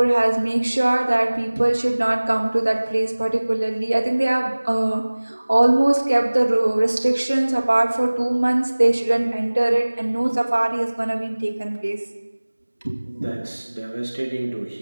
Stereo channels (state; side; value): inverted; both; correlation -1.00